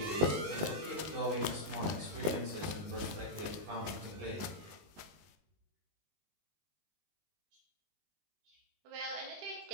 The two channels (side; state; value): left; late; 20 ms